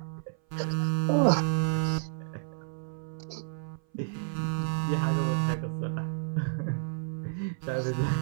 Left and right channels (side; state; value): left; silent; 57 dB below the other